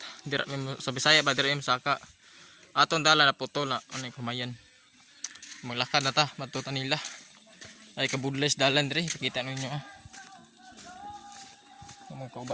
Dira sa Bisaya ba dira saka. Aton dala na putol na ano kumayan. Maglakad na ta, matuta nila. Ay kabudles dalan diri, kita ninyo ah. Mga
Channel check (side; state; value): both; identical; correlation 1.00